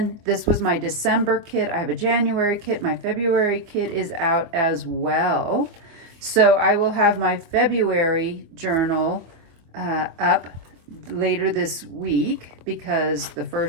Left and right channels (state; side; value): late; left; 24 ms